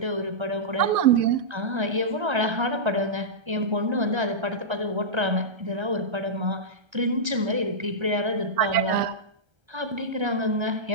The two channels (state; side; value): late; left; 1.3 ms